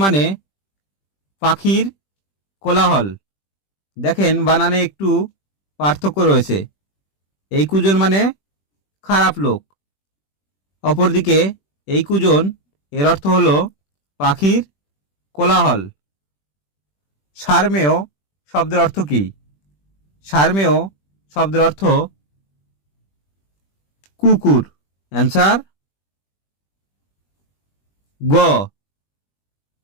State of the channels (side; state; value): right; late; 21 ms